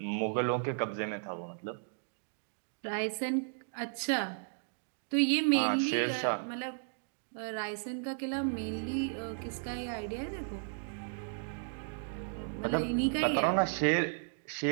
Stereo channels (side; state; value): left; silent; digital silence